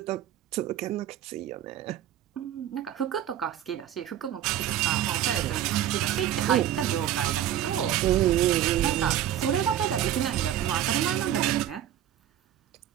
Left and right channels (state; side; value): quieter; left; 11.4 dB